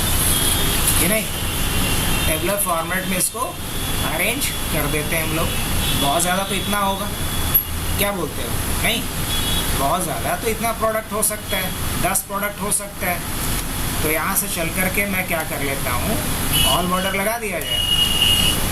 कि नहीं? टेबलर फॉर्मेट में इसको अरेंज कर देते हैं हम लोग। बहुत ज़्यादा तो इतना होगा, क्या बोलते हो? नहीं, बहुत ज़्यादा तो इतना प्रोडक्ट हो सकता है, 10 प्रोडक्ट हो सकता है। तो यहाँ से चल कर के मैं क्या कर लेता हूँ? ऑल बॉर्डर लगा दिया जाए।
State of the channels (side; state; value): both; identical; correlation 1.00